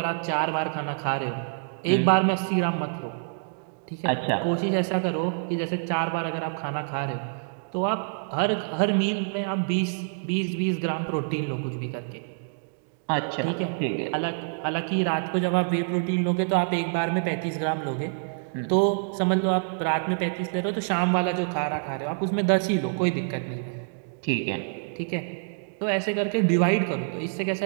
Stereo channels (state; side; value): silent; left; digital silence